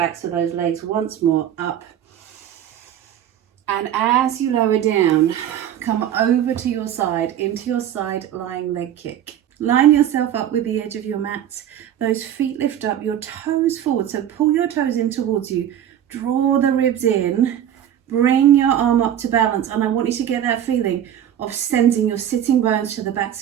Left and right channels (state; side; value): quieter; left; 10.5 dB